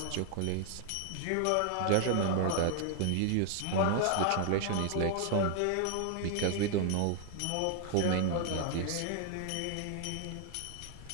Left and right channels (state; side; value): different; both; correlation 0.00